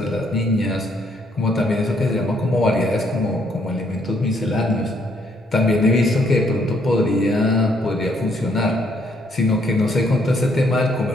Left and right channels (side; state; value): both; normal; correlation 0.69